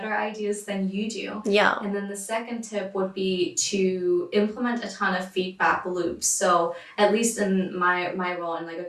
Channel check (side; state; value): both; identical; correlation 1.00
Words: ideas than you do. Yeah. And then the second tip would be to implement a ton of feedback loops. So at least in my role, in like a